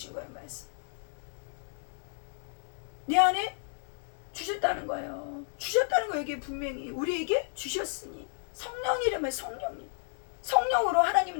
거예요. 말씀. 내 안에 주셨다는 거예요. 주셨다는 거 여기 분명히 우리에게 주셨으니 성령이라면 성령으로 하나님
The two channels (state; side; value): silent; right; 56 dB below the other